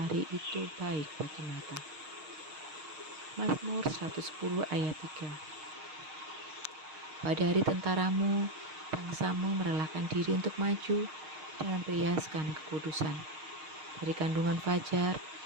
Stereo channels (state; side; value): late; left; 6.5 ms